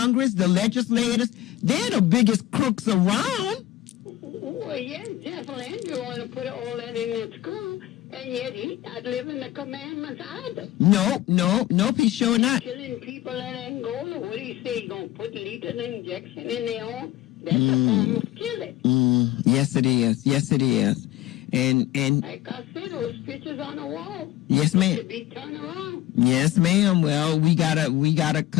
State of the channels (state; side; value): quieter; right; 15.1 dB